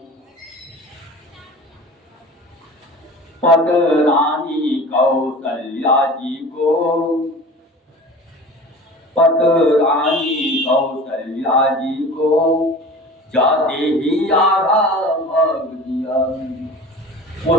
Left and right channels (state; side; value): normal; both; correlation 0.39